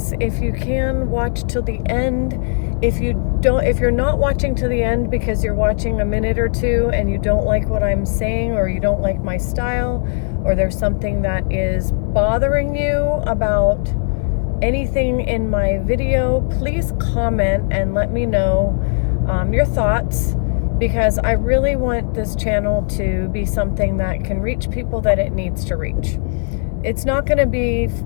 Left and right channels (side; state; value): right; silent; 59 dB below the other